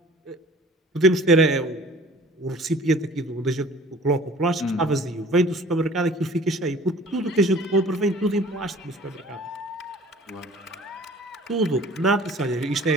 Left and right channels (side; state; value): both; normal; correlation 0.48